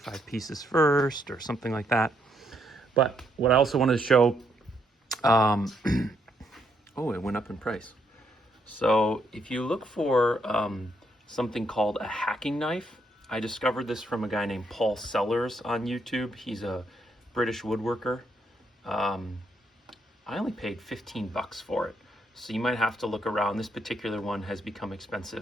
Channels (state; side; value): normal; both; correlation 0.75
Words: pieces first or something like that. But what I also wanted to show, oh, it went up in price. So if you look for something called a hacking knife, I discovered this from a guy named Paul Sellers on YouTube. He's a British woodworker. I only paid 15 bucks for it. So you might have to look around. This particular one has become